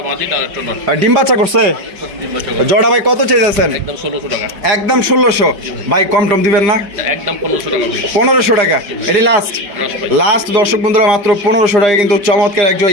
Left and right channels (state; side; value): late; left; 5.0 ms